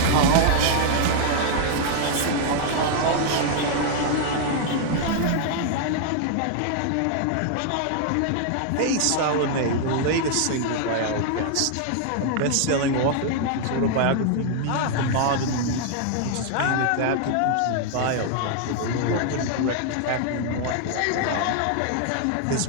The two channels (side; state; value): both; different; correlation -0.01